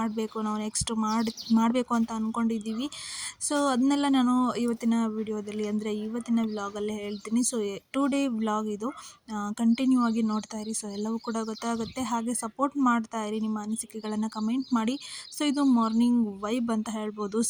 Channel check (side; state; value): both; identical; correlation 1.00